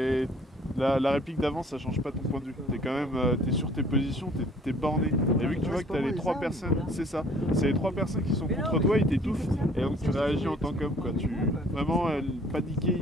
la réplique d'avant, ça change pas ton point de vue. T'es quand même, t'es sur tes positions, t'es borné. Et vu que tu vois que t'as les trois personnes, c'est ça. C'est les trois personnes qui sont contre toi, ils t'étouffent. Et donc tu réagis en tant qu'homme, quoi. Tu vraiment paniqué,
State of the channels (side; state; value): both; normal; correlation 0.56